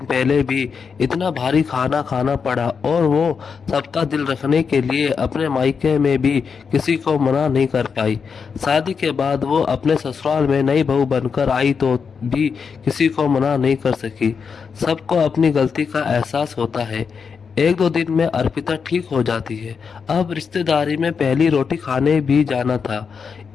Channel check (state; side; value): quieter; right; 5.9 dB